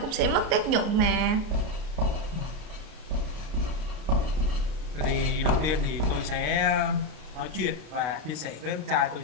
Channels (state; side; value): late; left; 33 ms